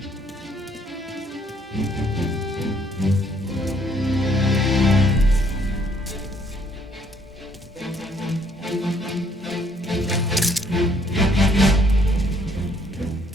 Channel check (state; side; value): normal; both; correlation 0.65